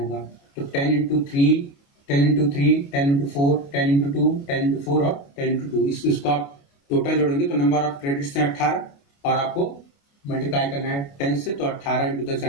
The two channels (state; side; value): late; right; 28 ms